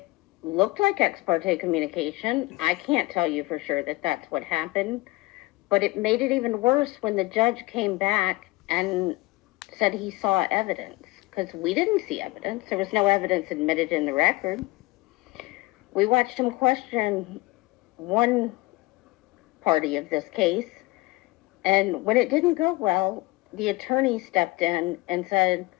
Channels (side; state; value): right; quieter; 21.6 dB